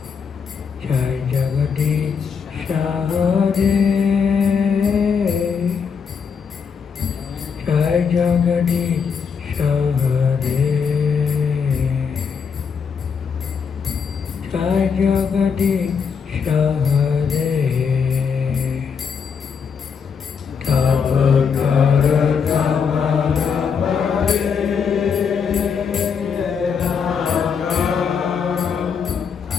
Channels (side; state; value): right; quieter; 6.3 dB